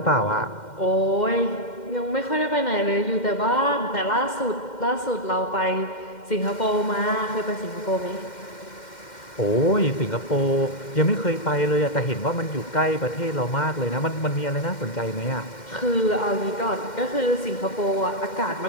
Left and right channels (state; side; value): late; right; 2.1 ms